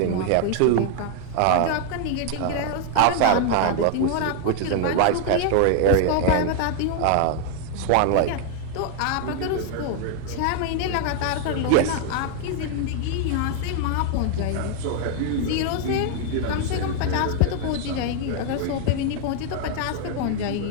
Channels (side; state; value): both; different; correlation 0.00